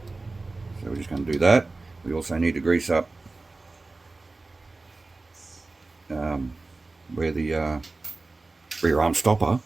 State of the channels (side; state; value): left; quieter; 3.4 dB